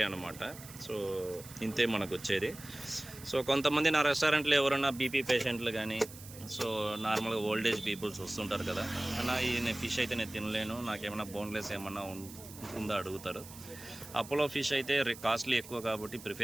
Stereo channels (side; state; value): right; noise; hiss, 16 dB below the sound